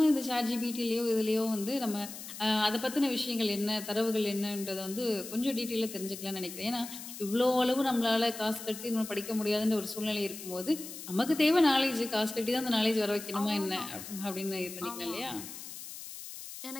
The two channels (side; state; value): left; noise; hiss, 11 dB below the sound